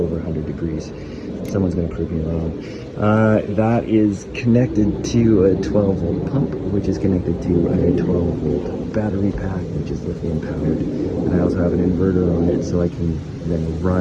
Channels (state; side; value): identical; both; correlation 1.00